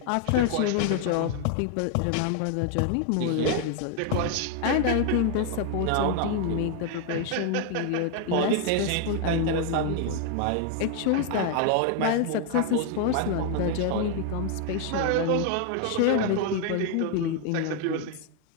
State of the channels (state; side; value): different; both; correlation 0.00